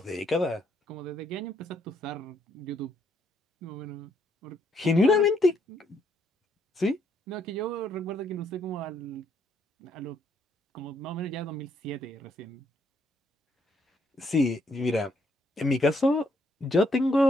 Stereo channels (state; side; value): normal; both; correlation 0.72